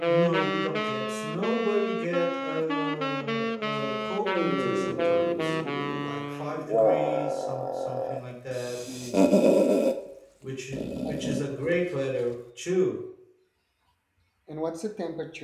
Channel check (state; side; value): identical; both; correlation 1.00